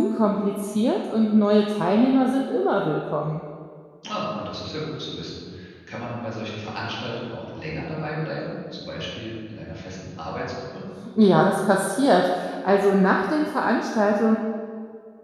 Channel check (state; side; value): identical; both; correlation 1.00